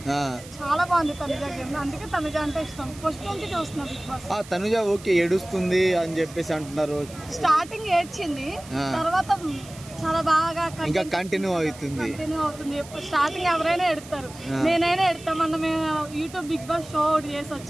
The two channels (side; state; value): right; noise; hiss, 18 dB below the sound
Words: చాలా బాగుంది తనుజ గేమ్. అందుకే తనుజ అంటే ఇష్టం. ఫస్ట్ నుంచి చూస్తున్నా బిగ్ బాస్. తనుజ ఓకే ఏడుస్తుంది అని చెప్పేసి అంటున్నారు. స్టార్టింగ్ ఏడ్చింది, తర్వాత చాలా బాగా ఇంకా కంటిన్యూ అవుతుంది. స్టార్టింగ్ ఎవరైనా ఎడతారు, నేనైనా ఎడతాం. మనం యూట్యూబ్ బిగ్ బాస్ షో ఒకటి చేసి